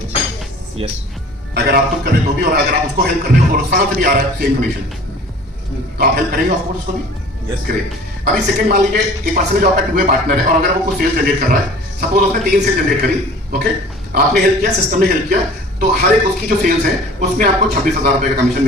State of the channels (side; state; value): both; normal; correlation 0.46